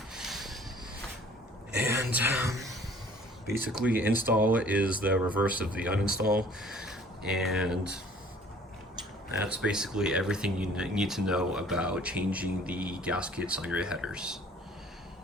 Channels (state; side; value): normal; both; correlation 0.53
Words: And basically, install is the reverse of the uninstall, and that's basically everything you need to know about changing the gaskets on your headers.